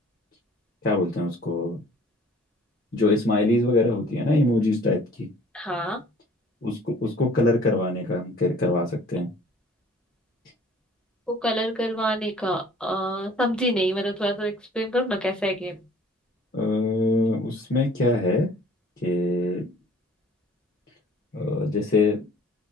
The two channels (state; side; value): normal; both; correlation 0.53